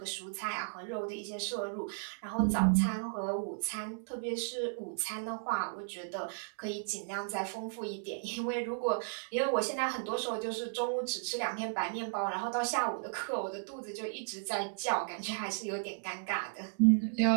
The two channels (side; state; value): left; silent; digital silence